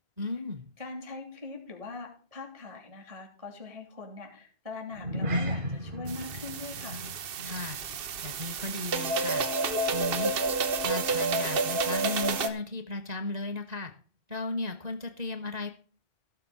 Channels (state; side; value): late; left; 2.6 ms